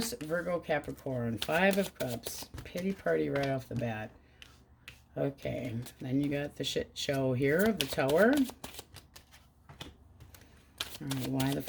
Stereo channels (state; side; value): identical; both; correlation 1.00